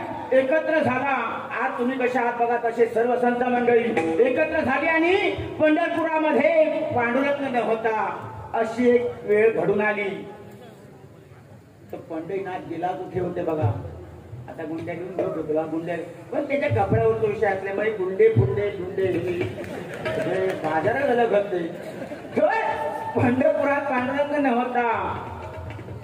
एकत्र झाला. आज तुम्ही कशा आहात बघा तसे सर्व संत मंडळी एकत्र झाली आणि पंढरपुरामध्ये पांडुरंग होता अशी एक वेळ घडून आली. तर पंढरीनाथ गेला कुठे होते बघा. आता गुंड्या घेऊन घेऊ तुला गुंड्या पण त्याच्या कपड्यावर तो विषय असल्यामुळे गुंडे फुंडे बाजारात झालं घडते. पंढरपुरात पांडुरंग नव्हता.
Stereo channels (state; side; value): identical; both; correlation 1.00